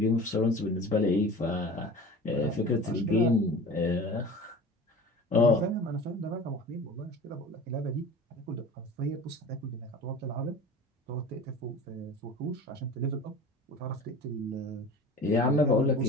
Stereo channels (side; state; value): both; normal; correlation 0.38